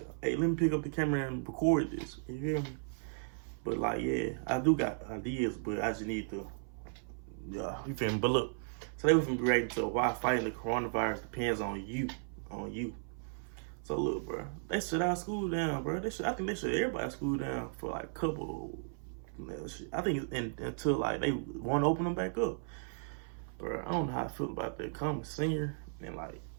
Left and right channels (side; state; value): left; silent; 54 dB below the other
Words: hey, let me pick up the camera and record this. You hear me? But like, yeah, I do got ideas, but I just need to, you feel me? But look, today we're gonna be reacting to why fighting the coronavirus depends on you, So look, bro, they shut our school down, bro. I think they shut everybody's school down for like a couple. I think until like they want to open them back up, bro. I don't know how I feel about that. Coming senior and like